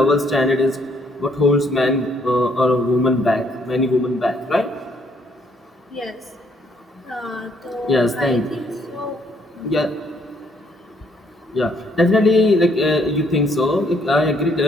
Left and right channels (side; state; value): both; normal; correlation 0.68